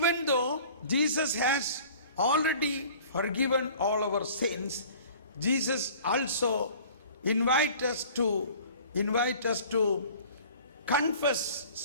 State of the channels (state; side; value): inverted; both; correlation -0.47